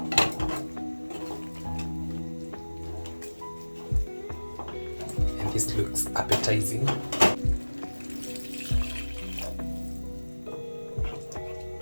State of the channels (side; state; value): both; inverted; correlation -1.00